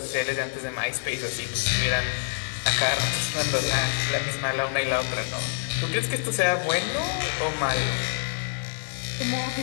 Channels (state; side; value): silent; right; digital silence